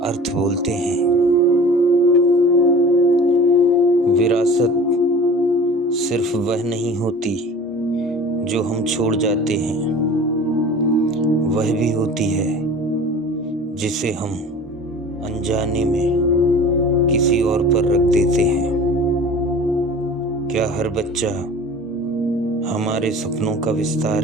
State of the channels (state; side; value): normal; both; correlation 0.42